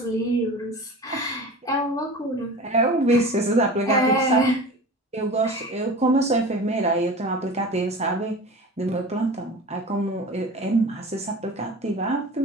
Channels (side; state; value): both; normal; correlation 0.35